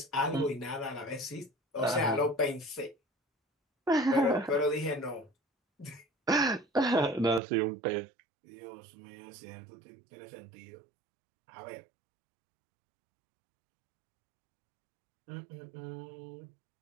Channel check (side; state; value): left; drops out; at 7.4 s